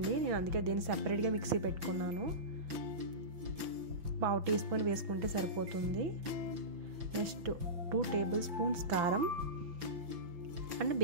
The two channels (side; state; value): left; late; 5.9 ms